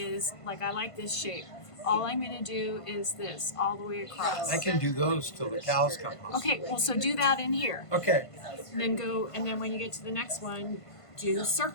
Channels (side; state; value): right; late; 1.5 ms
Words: like, I like this shape. All I'm going to do is this, all the way across. I can do those till the cows come home. Okay, well, so do that in here. Okay. And then when you get to the next one, do